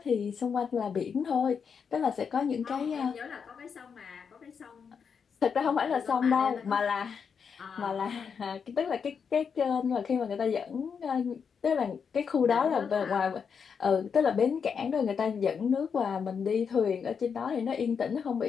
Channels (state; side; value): quieter; right; 6.4 dB